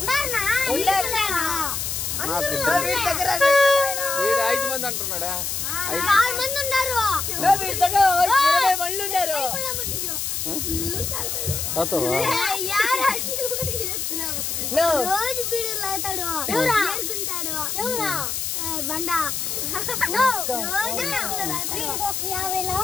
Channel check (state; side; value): noise; left; hiss, 2 dB below the sound